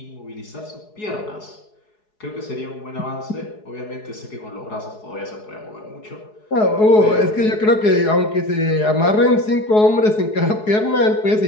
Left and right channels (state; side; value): late; right; 4.7 ms